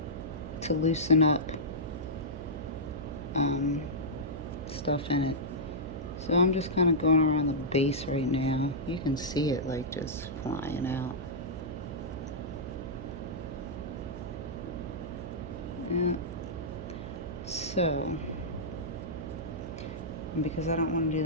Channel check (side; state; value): right; noise; hum, 9 dB below the sound